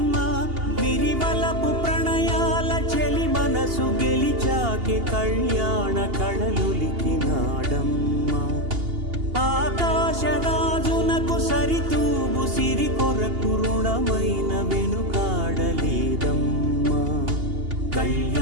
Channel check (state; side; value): late; left; 2.8 ms